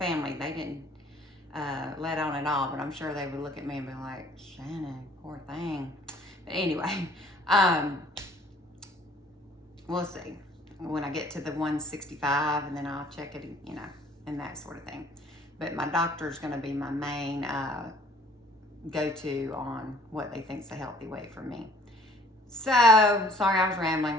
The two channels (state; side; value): normal; both; correlation 0.56